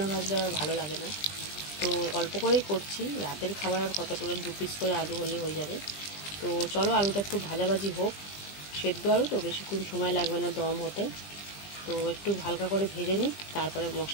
ভাজলে আবার ভালো লাগে না। তো অল্প করেই করছি, রাতের খাবার আর কতটা 2 পিস করে আলু হলে হয়ে যাবে। তো চলো আলুটা একটু ভাজাভাজি হোক, সেদ্ধ আলু তো বেশিক্ষণ সময় লাগবে না দম হতে। তো একটু হালকা করে ভেজে নিই, তারপরে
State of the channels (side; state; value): right; late; 20 ms